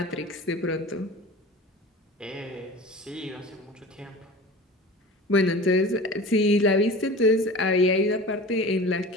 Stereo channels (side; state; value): both; normal; correlation 0.37